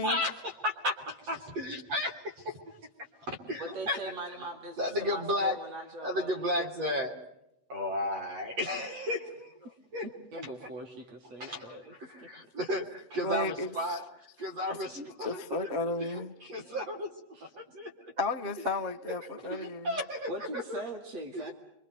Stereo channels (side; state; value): left; late; 8.2 ms